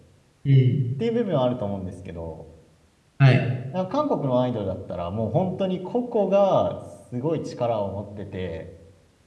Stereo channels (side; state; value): both; identical; correlation 1.00